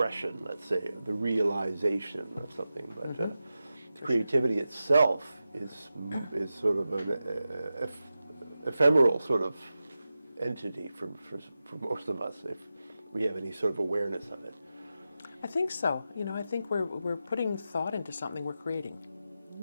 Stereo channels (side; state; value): both; inverted; correlation -0.92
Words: let's say, the realization of something. But creativity itself is sort of an ephemeral sort of entity for most of us, if we have any sort of awareness of it. I think so. I think we're putting thought into something we're creating.